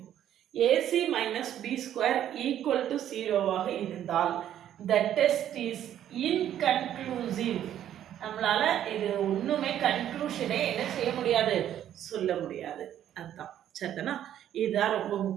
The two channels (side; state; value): left; quieter; 11.0 dB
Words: AC minus B square equal to 0 ஆக இருந்தால் the test is inconclusive. நம்மளால இது ஒண்ணுமே கன்க்ளூஷனே என்ன செய்ய முடியாது, சொல்ல முடியாது. அதுதான் சரிதானா? இதுதான் ரொம்ப